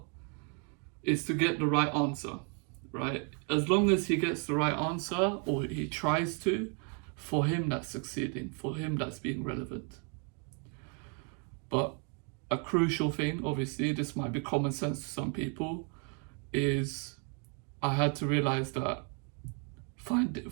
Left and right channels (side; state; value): left; quieter; 38.2 dB